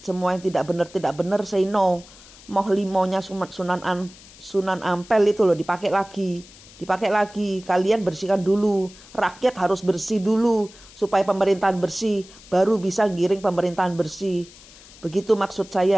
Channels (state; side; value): noise; left; hiss, 21 dB below the sound